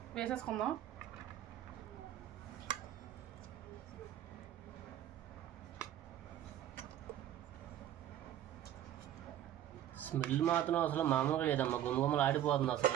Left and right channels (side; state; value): left; quieter; 11.7 dB